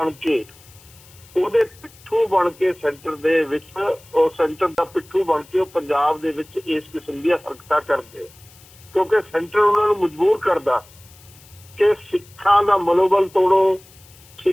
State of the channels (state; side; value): noise; left; hiss, 25 dB below the sound